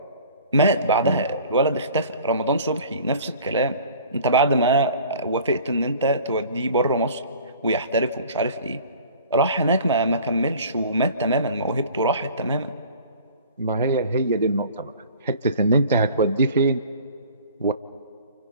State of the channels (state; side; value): inverted; both; correlation -0.47